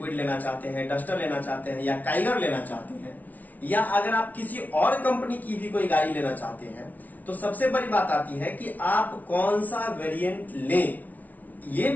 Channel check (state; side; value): late; right; 0.076 ms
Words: लेना चाहते हैं, डस्टर लेना चाहते हैं या टाइगर लेना चाहते हैं, या अगर आप किसी और कंपनी की भी कोई गाड़ी लेना चाहते हैं, तो सबसे बड़ी बात आती है कि आप कौन सा वेरिएंट लें। ये